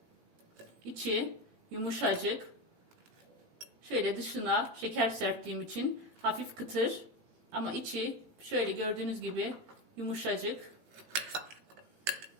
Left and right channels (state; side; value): late; left; 18 ms